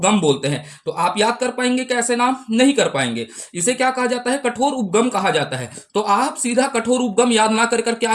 बोलते हैं। तो आप याद कर पाएंगे कैसे? नाम नहीं कर पाएंगे। इसे क्या कहा जाता है? कठोर उपगम कहा जाता है। तो आप सीधा कठोर उपगम याद ना कर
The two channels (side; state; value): both; identical; correlation 1.00